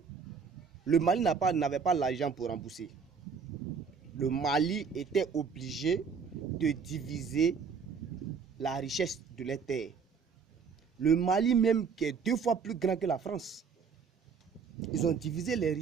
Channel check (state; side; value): quieter; left; 5.8 dB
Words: le Mali n'avait pas l'argent pour rembourser. Le Mali était obligé de diviser la richesse de les terres. Le Mali même, qui est 2 fois plus grand que la France, ils ont divisé les